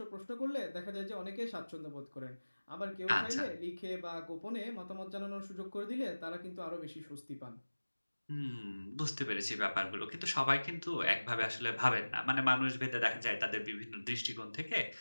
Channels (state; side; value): inverted; both; correlation -1.00